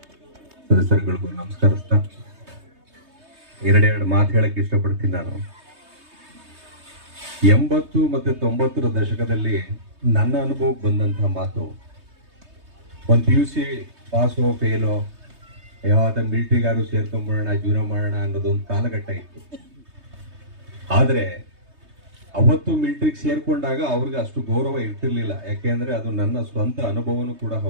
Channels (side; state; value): left; late; 3.2 ms